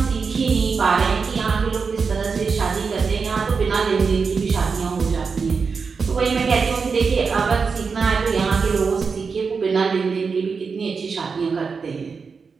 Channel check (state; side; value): quieter; left; 5.2 dB